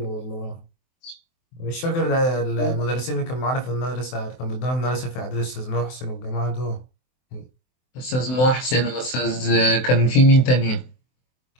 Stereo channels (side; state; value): right; late; 24 ms